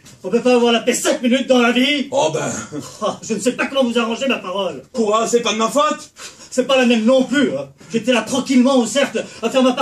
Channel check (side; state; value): both; identical; correlation 1.00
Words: On peut pas avoir la paix 5 minutes dans la vie. Oh ben... Ah, je ne sais pas comment vous arranger ma parole. Quoi? C'est pas de ma faute? C'est pas la même non plus. Hein. J'étais là tranquillement au cercle à faire ma